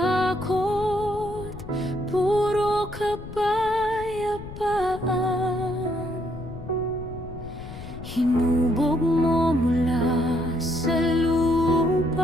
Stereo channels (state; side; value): noise; left; rumble, 12 dB below the sound